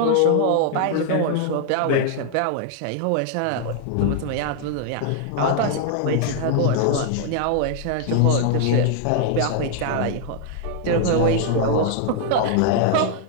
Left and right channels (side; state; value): both; different; correlation -0.01